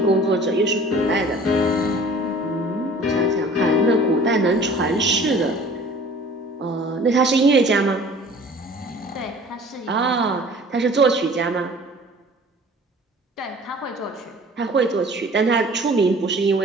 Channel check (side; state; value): both; normal; correlation 0.47